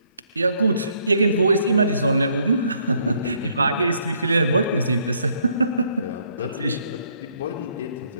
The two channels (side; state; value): both; inverted; correlation -0.69